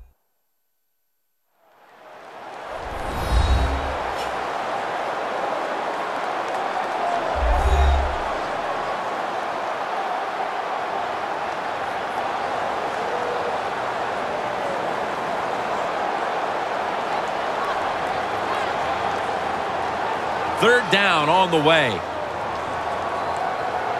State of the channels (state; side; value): identical; both; correlation 1.00